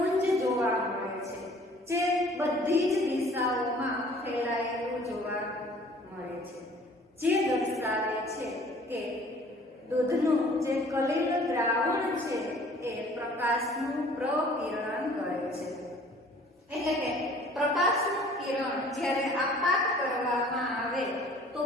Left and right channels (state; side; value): normal; both; correlation 0.52